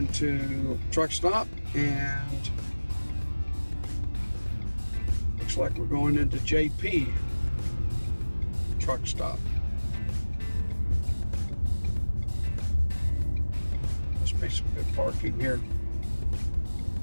truck stop, and looks like we're going into JP truck stop. Must be some good parking here.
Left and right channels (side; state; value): both; inverted; correlation -1.00